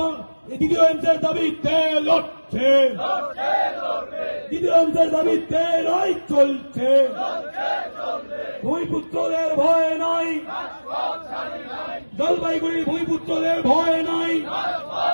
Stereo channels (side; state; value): both; inverted; correlation -1.00